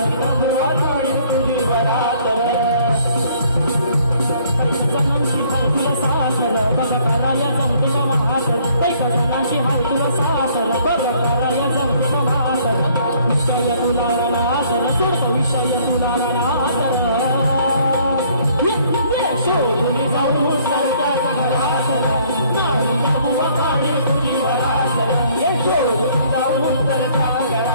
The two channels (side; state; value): both; inverted; correlation -0.61